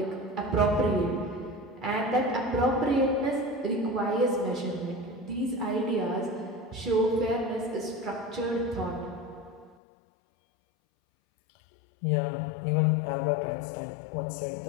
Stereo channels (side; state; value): right; drops out; at 9.8 s